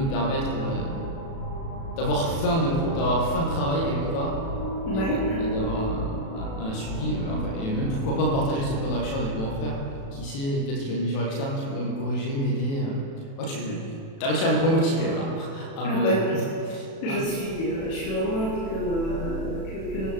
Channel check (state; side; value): late; right; 36 ms